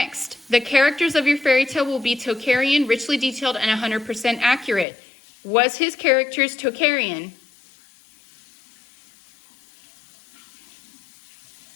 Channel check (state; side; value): drops out; right; at 4.9 s